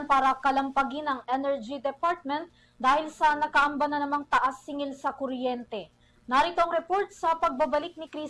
para kalampagin ang Energy Department dahil sa nakaamba na namang taas singil sa kuryente. Narito ang report sa pagbabalik ni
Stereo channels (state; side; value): identical; both; correlation 1.00